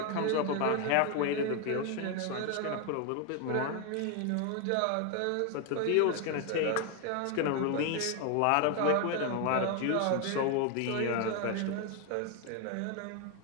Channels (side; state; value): both; different; correlation 0.01